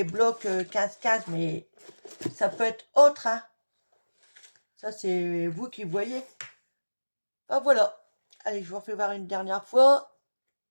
blocs 15-15, mais ça peut être autre, hein. Ça c'est vous qui voyez. Ah voilà. Allez, je vous refais voir une dernière fois.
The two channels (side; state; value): both; inverted; correlation -1.00